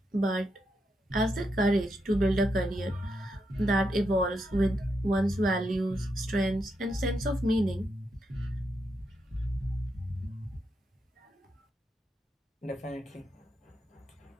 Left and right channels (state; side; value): normal; both; correlation 0.83